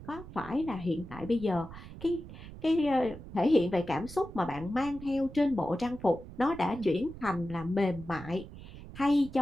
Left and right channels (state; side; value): noise; right; rumble, 14 dB below the sound